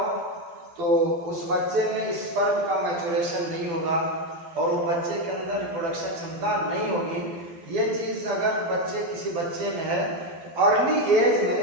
तो उस बच्चे में स्पर्म का मैच्योरेशन नहीं होगा और वो बच्चे के अंदर रिप्रोडक्शन क्षमता नहीं होगी। ये चीज़ अगर किसी बच्चे में है तो अर्ली एज में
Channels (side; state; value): left; late; 12 ms